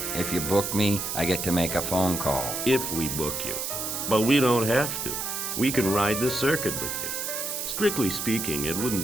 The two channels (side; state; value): right; noise; hiss, 3 dB below the sound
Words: If you book me, I get to make a phone call. If we book you. But we don't have to. We can ride the circuit with you. Strictly speaking, it